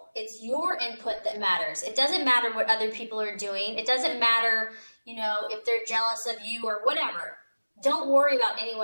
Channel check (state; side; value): inverted; both; correlation -1.00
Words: It's your input that matters. It doesn't matter what other people are doing. It doesn't matter, you know, if they're jealous of you or whatever. Don't worry about